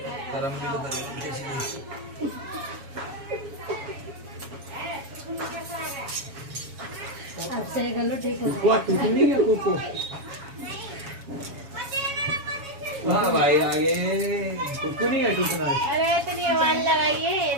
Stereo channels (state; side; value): late; left; 7.2 ms